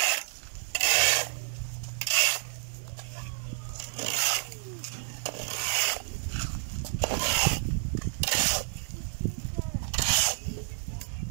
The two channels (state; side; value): silent; left; 58 dB below the other